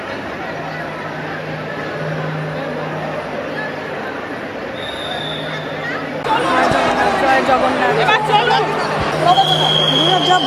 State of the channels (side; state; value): both; identical; correlation 1.00